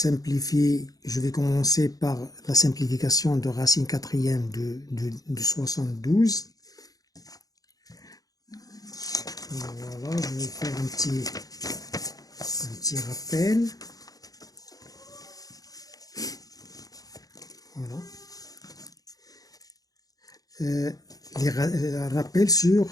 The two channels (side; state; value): right; late; 0.18 ms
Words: je vais commencer par la simplification de racine quatrième de 72. Voilà, je vais faire un petit rappel. Voilà. Rappel sur